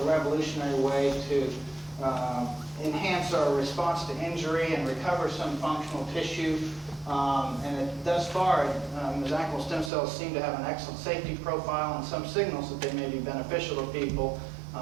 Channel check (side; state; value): left; drops out; at 9.9 s